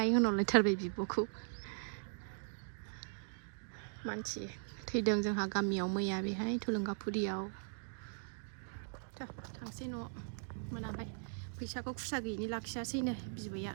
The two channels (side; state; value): left; silent; digital silence